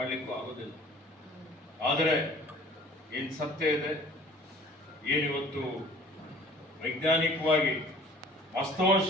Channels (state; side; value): normal; both; correlation 0.50